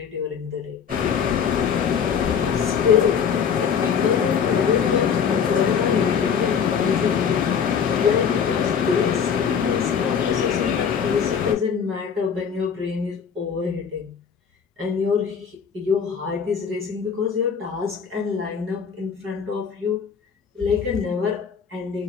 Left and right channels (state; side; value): quieter; right; 7.0 dB